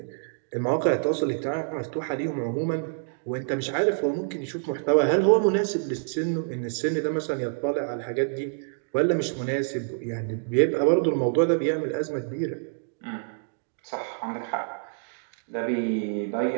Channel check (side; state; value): left; silent; digital silence